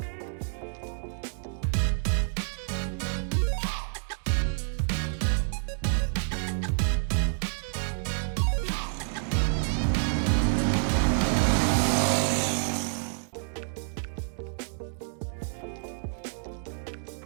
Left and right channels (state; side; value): silent; left; digital silence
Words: Here's how to fix it. The first thing to try is to rethread your studs.